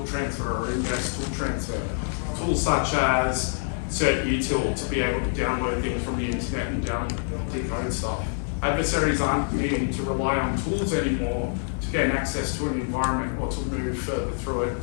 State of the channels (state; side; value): silent; right; 61 dB below the other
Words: transfer or index tool transfer, tools such as certutil to be able to download things from the internet and decode stuff. Adversaries aren't needing to rely on tools anymore to gain access to an environment or to move further through it